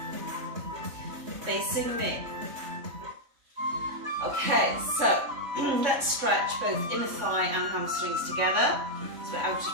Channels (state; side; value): late; left; 3.6 ms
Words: Facing me. Okay, so let's stretch both inner thigh and hamstrings together. So we're out